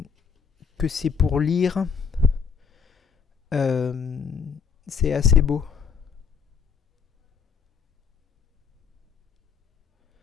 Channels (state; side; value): quieter; right; 6.3 dB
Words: que c'est pour lire. Euh, c'est assez beau.